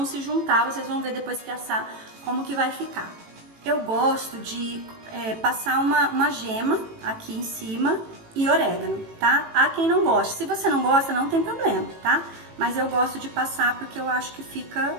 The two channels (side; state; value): left; late; 18 ms